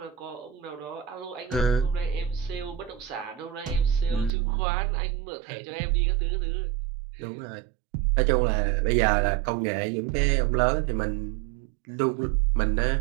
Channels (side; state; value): left; drops out; at 4.3 s